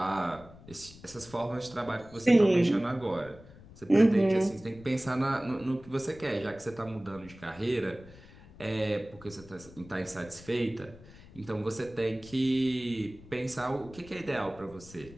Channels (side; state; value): left; noise; rumble, 20 dB below the sound